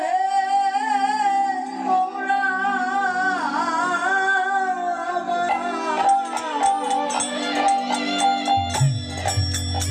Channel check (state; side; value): identical; both; correlation 1.00